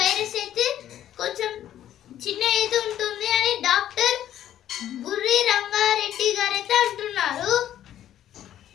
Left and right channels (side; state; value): right; quieter; 11.6 dB